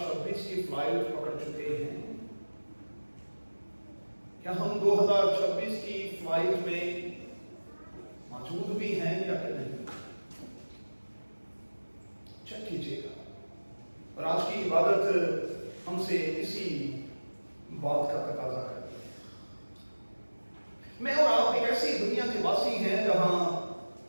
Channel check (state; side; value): inverted; both; correlation -1.00